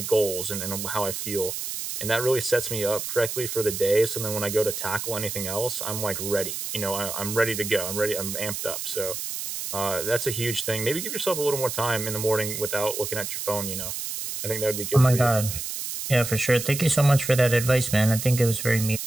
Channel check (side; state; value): right; noise; hiss, 5 dB below the sound